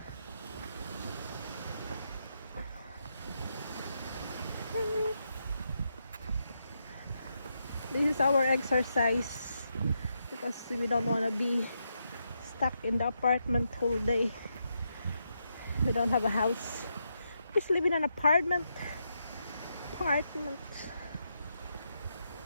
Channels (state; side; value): inverted; both; correlation -0.82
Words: This is our exercise because we don't want to be stuck in the apartment whole day. We don't have a house. Just live in an apartment.